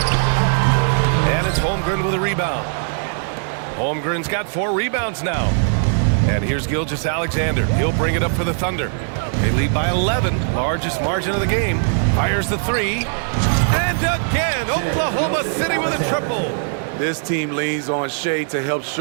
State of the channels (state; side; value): silent; left; 57 dB below the other